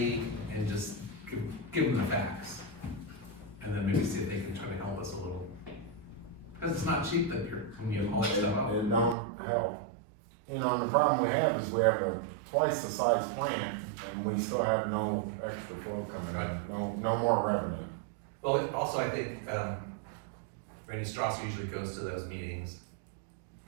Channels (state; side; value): drops out; left; at 9.2 s